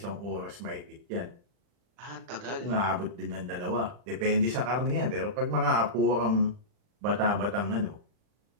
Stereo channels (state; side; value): late; left; 40 ms